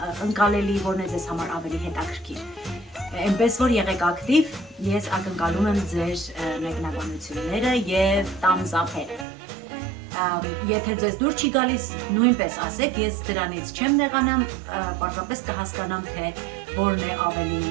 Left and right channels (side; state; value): left; drops out; at 9.2 s